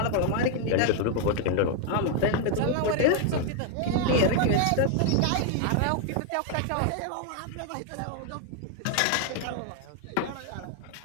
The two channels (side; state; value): both; different; correlation 0.00